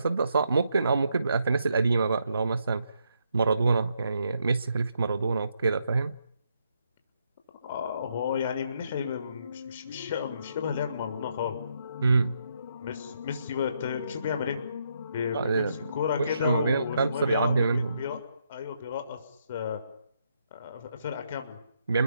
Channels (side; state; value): both; inverted; correlation -0.77